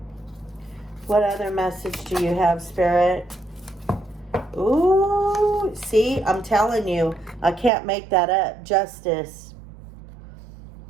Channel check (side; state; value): left; drops out; at 7.7 s